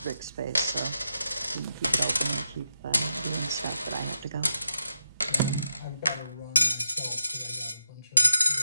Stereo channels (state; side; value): inverted; both; correlation -0.86